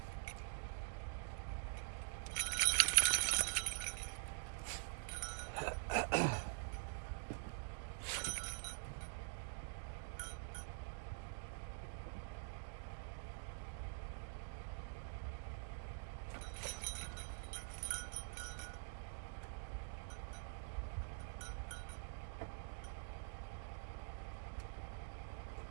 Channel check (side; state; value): left; silent; digital silence